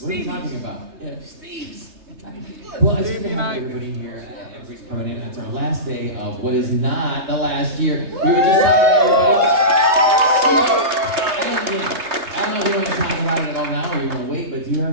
What are you talking about? Yeah. Steve's. Well, it's good to have everybody here. Everybody's coming in. It's our last day of what is not the last year. We were just talking to everybody. I don't know if you want to talk about it at all now or you want to wait, but do you have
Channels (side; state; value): left; late; 3.3 ms